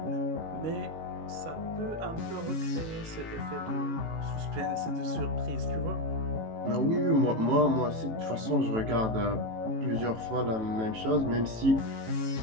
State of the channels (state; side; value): late; left; 18 ms